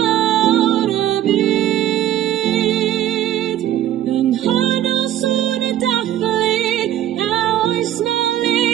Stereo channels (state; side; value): quieter; left; 12.0 dB